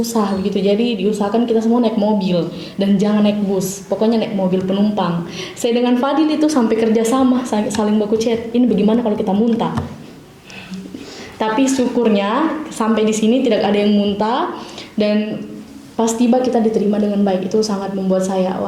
begitu. Jadi diusahakan kita semua naik mobil dan jangan naik bus, pokoknya naik mobil penumpang. Saya dengan Fadil itu sampai kerjasama, saling baku chat. Ini bagaimana kalau kita muntah? Tapi syukurnya sampai di sini tidak ada yang muntah dan pas tiba kita diterima dengan baik. Itu sangat membuat saya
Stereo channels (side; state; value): both; identical; correlation 1.00